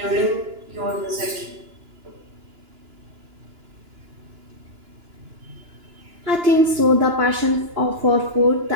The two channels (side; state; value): left; late; 2.9 ms